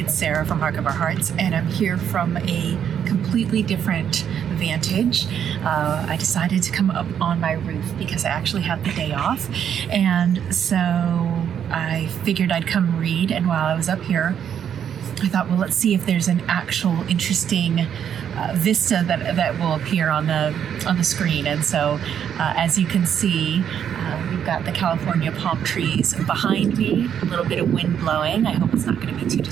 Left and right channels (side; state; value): left; quieter; 8.7 dB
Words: Sarah from Hark of Our Hearts, and I'm here from a completely different vantage. I decided to come up on my roof because I actually have the day off, and so I figured I'd come read. And while I was up here, I thought, well, let's see if there's an actual interesting vista that will appear on the screen. And so, as you can see, we've got the California palm trees behind me, a little bit of wind blowing. I hope it's not going to be too